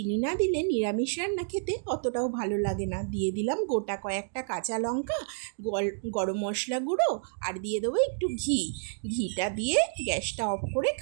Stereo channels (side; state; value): left; silent; digital silence